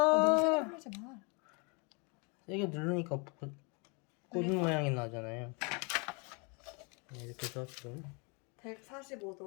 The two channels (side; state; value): right; quieter; 32.5 dB